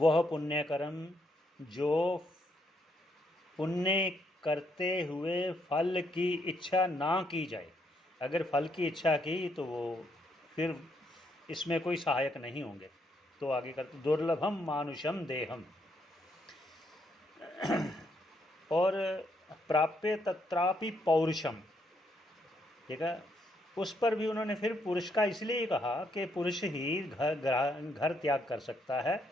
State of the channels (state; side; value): normal; both; correlation 0.75